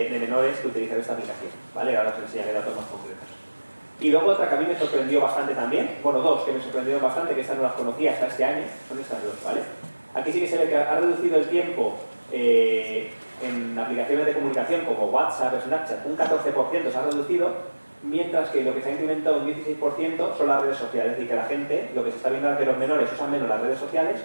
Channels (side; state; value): both; inverted; correlation -1.00